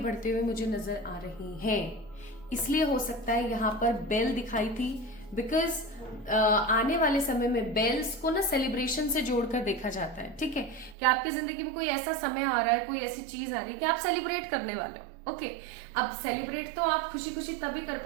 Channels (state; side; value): drops out; left; at 11.0 s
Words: हुए मुझे नजर आ रही हैं। इसलिए हो सकता है यहाँ पर बेल दिखाई थी, बिकॉज आने वाले समय में बेल्स को ना सेलिब्रेशन से जोड़कर देखा जाता है। ठीक है, कि आपकी जिंदगी में कोई ऐसा समय आ रहा है, कोई ऐसी चीज आ रही है कि आप सेलिब्रेट करने वाले हो। ओके, अब सेलिब्रेट तो आप खुशी खुशी तभी कर